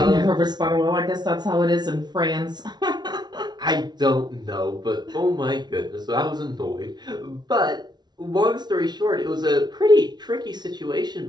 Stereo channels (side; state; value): left; late; 0.20 ms